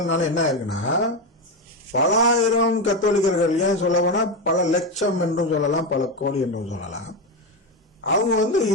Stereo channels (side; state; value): both; normal; correlation 0.13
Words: என்ன இருக்குன்னா, பல ஆயிரம் கத்தோலிக்கர்கள், ஏன் சொல்ல போனா பல லட்சம் என்றும் சொல்லலாம், பல கோடி என்றும் சொல்லலாம், அவங்க